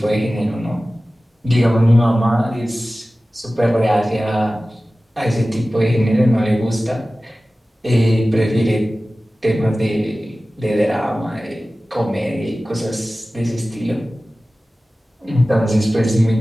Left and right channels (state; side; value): normal; both; correlation 0.96